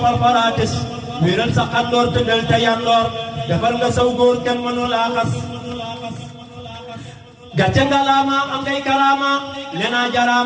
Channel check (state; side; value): identical; both; correlation 1.00